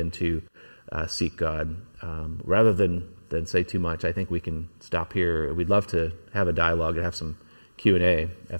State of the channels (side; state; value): both; inverted; correlation -1.00